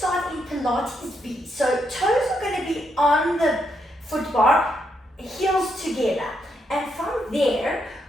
in Pilates V. So toes are going to be on the foot bar, heels together. And from there,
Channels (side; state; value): both; normal; correlation 0.79